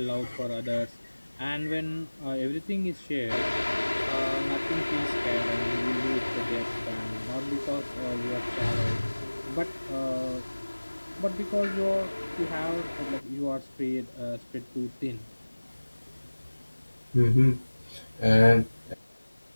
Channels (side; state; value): both; inverted; correlation -1.00